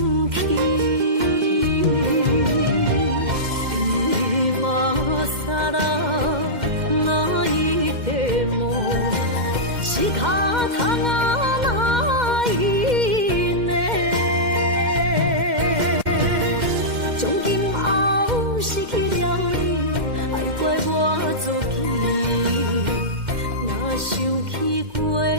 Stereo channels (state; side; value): late; left; 2.1 ms